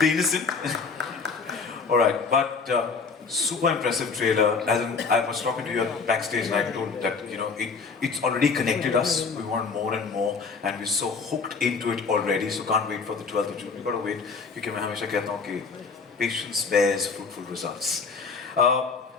innocent. All right, but super impressive trailer. As in, I was talking to you at backstage, and I told that it's already connected us. We want more and more, and we're so hooked into it already. So can't wait for the 12th of June. We got to wait. क्योंकि मैं हमेशा कहता हूँ कि patience bears fruitful results.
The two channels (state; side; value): quieter; right; 5.0 dB